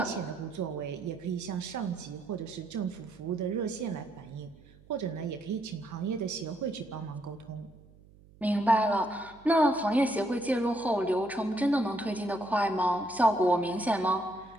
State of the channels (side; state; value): right; noise; hum, 25 dB below the sound